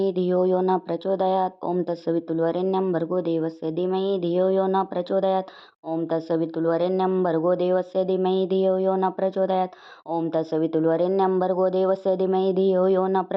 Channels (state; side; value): identical; both; correlation 1.00